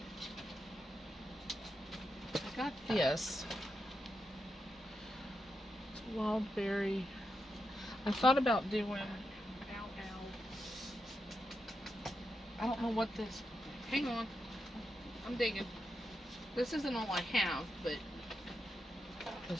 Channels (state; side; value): normal; both; correlation 0.86